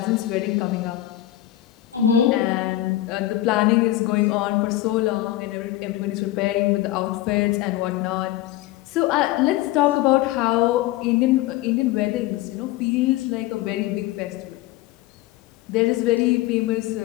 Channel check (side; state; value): right; quieter; 15.0 dB